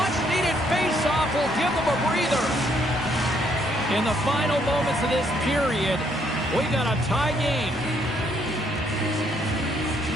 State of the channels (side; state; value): right; noise; rumble, 25 dB below the sound